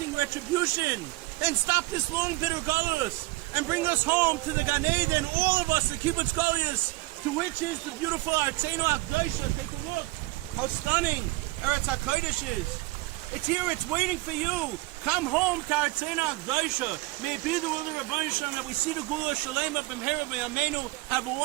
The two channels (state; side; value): quieter; left; 20.7 dB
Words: retribution, and stop this long bitter galus, and bring us home to the Gan Eden, all of us, the kibbutz galus, to which is the beautiful Tzena Akdosha. Take a look how stunning Eretz HaKodesh is. It's here, it's waiting for you. Come home to our Tzena Akdosha. May it be the will of the Rebbeinu Shalom that we see the Gula Shalema B'mhera B'yameinu. Have a